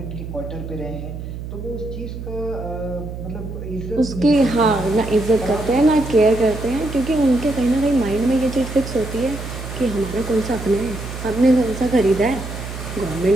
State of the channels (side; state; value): right; noise; hum, 9 dB below the sound